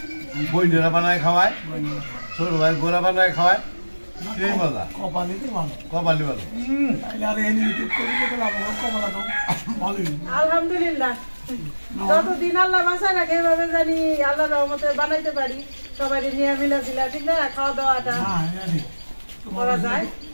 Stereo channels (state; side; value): inverted; both; correlation -1.00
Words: বইনেরা বানায় খাওয়ায় ছোট ভাই গোড়া বানায় খাওয়ায় সেই মজা কপালি ভালো আলহামদুলিল্লাহ যতদিন আল্লাহ বাঁচায় রাখে এভাবে জানি আল্লাহ রহমতে বানাইতে পারি সবাই নিয়ে মিলা দিলা ঠিক না খাওয়া দাওয়াটা করা যায়